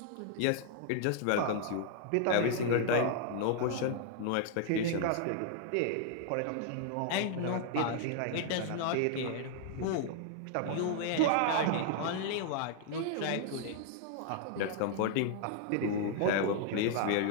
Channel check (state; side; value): different; both; correlation 0.00